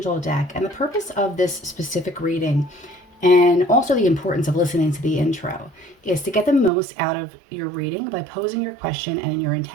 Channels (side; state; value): left; drops out; at 6.7 s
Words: deck, and the purpose of this specific reading and also the importance of listening to the intro is to get the most out of your reading by posing your question and your